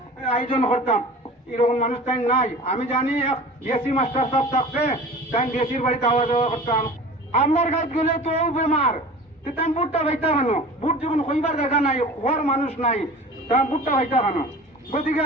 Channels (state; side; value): normal; both; correlation 0.39